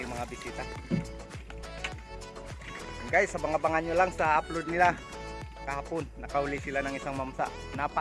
mga bisita. Guys, abangan nyo lang sa upload nila. Kahapon, nakauli sila ng isang mamsa.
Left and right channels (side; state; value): both; identical; correlation 1.00